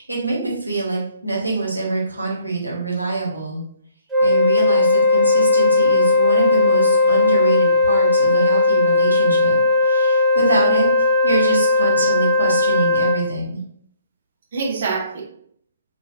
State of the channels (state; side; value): inverted; both; correlation -0.62